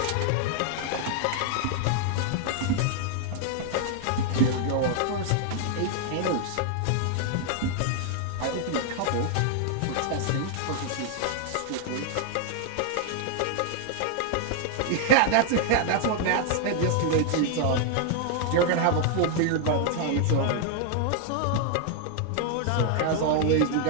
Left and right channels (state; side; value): different; both; correlation 0.00